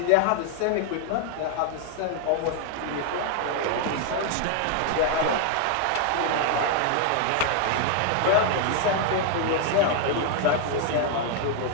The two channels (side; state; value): both; different; correlation 0.00